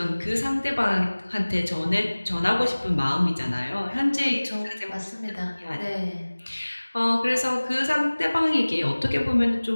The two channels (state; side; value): inverted; both; correlation -1.00